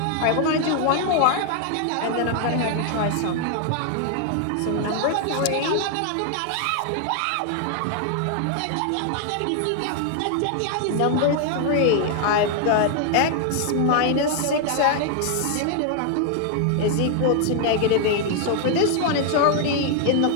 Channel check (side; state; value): both; different; correlation 0.00